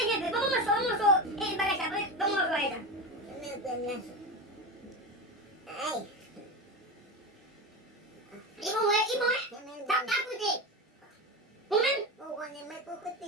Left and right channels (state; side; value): normal; both; correlation 0.22